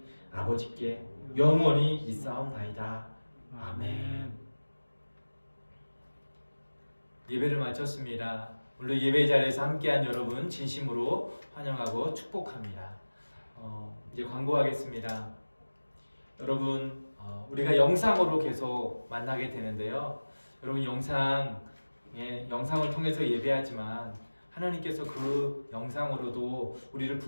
아버지께 영원히 있사옵나이다. 아멘. 예배를 마쳤습니다. 오늘 예배 자리에서 함께한 여러분 진심으로 환영하고 축복합니다. 이제 광고하겠습니다. 여러분 우리가 영상으로 계속 만나게 되는데요. 여러분 영상을 통해서 예배하지만 하나님께서 그 영상으로도 우리를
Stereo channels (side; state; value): both; inverted; correlation -1.00